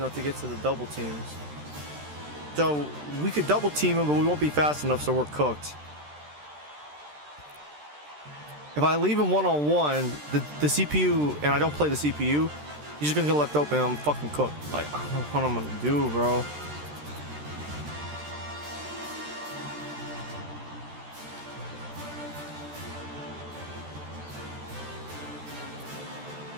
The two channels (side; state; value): left; late; 13 ms